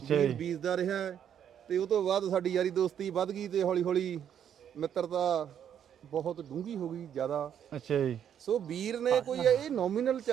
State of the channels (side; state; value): left; quieter; 9.2 dB